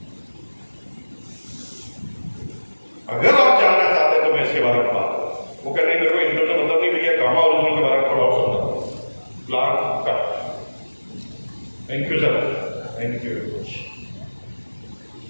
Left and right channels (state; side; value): inverted; both; correlation -1.00